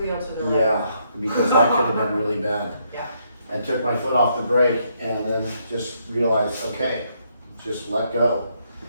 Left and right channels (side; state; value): both; inverted; correlation -0.74